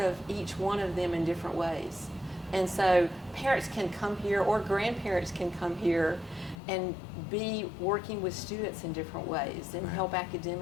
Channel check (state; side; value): drops out; right; at 6.6 s